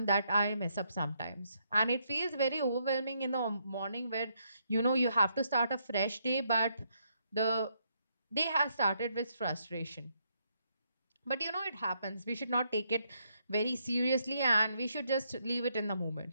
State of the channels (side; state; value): both; inverted; correlation -0.75